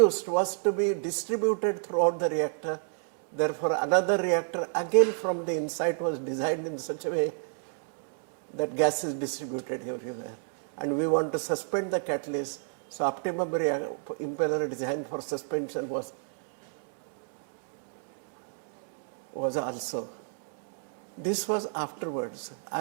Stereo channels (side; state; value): left; silent; digital silence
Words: was to be distributed throughout the reactor. Therefore, another reactor again from the inside was designed in such a way that gas is distributed everywhere. And we want to suspend the catalyst. So optimum impeller design for suspension was also. This was afterwards.